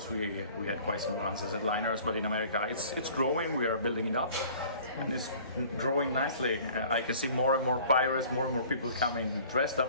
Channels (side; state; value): both; inverted; correlation -0.49